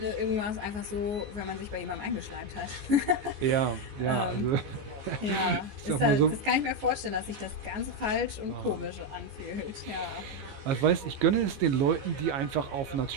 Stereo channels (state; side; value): late; left; 14 ms